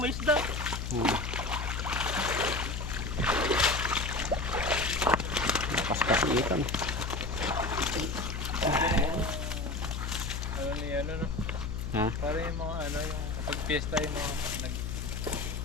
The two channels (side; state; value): left; noise; hum, 4 dB below the sound